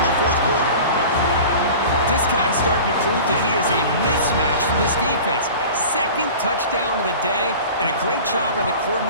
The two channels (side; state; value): both; inverted; correlation -0.38